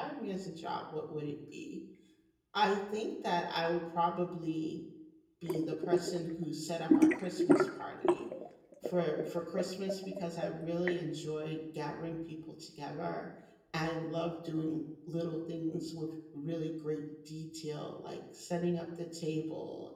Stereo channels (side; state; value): both; identical; correlation 1.00